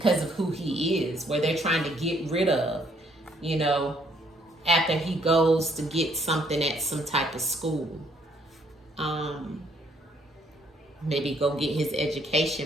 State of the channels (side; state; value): both; normal; correlation 0.67